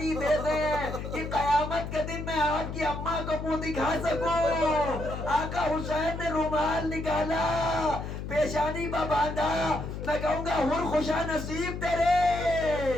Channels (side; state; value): left; noise; hum, 7 dB below the sound